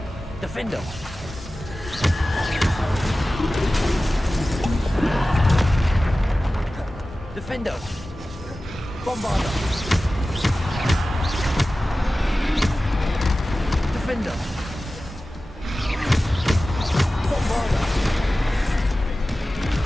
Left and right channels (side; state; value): both; normal; correlation 0.96